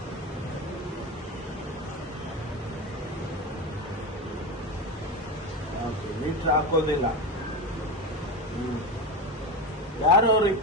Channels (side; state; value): both; normal; correlation 0.21